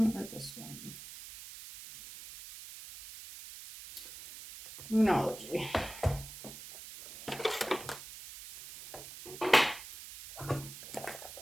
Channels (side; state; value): right; noise; hiss, 13 dB below the sound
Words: or this one? Moonology.